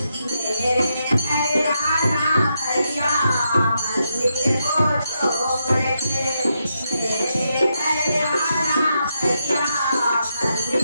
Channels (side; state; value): both; inverted; correlation -0.83